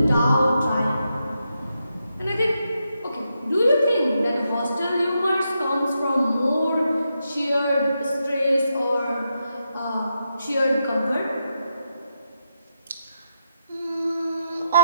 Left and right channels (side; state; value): both; inverted; correlation -0.84